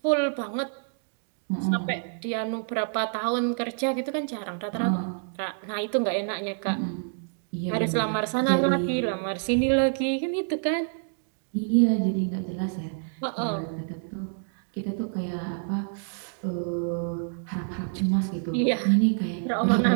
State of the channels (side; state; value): left; silent; digital silence